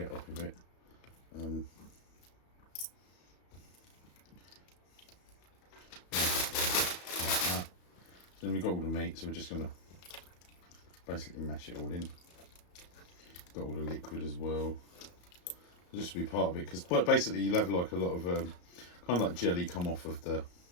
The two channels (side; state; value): right; late; 34 ms